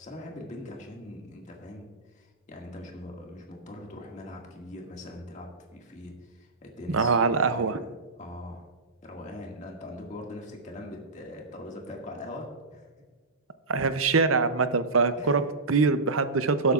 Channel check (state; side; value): quieter; left; 3.6 dB